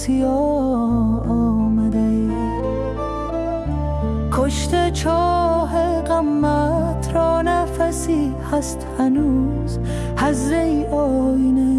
آمده. کشته چاه غمت را نفسی هست هنوز، حضره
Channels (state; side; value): identical; both; correlation 1.00